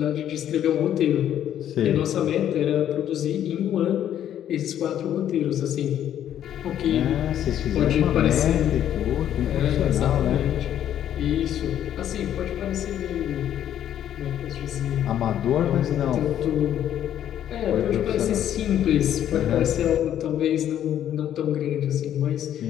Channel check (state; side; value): quieter; right; 10.7 dB